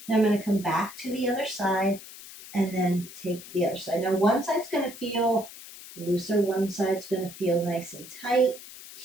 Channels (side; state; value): left; noise; hiss, 15 dB below the sound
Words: Now I'm going to come back to the other side and then take the other side. Now one side's going to feel looser. One side's going to feel nice and tight